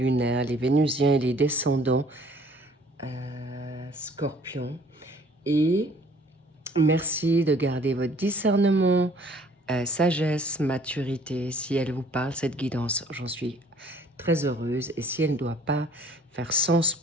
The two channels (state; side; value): normal; both; correlation 0.56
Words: les vénusiens et les descendants scorpions. Et merci de garder votre discernement, sagesse, maturité. Si elle vous parle, cette guidance, j'en suis très heureuse. Et si elle ne doit pas faire sens